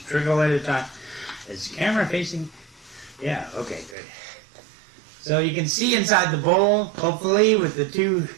trickle at a time. Is the camera facing? Yeah, okay, good. So you can see inside the bowl, hopefully, with the two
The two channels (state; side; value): drops out; left; at 4.0 s